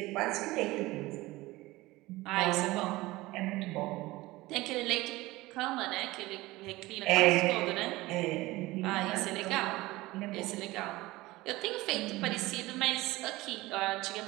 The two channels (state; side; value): quieter; left; 19.5 dB